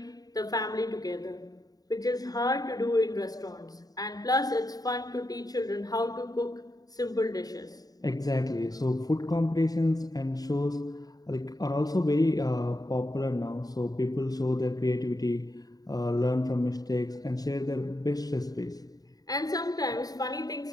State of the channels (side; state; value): right; late; 0.18 ms